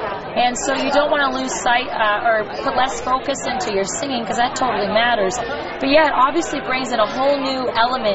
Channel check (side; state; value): both; identical; correlation 1.00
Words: And so you don't want to lose sight or put less focus into your singing because that totally matters. But yeah, it obviously brings in a whole new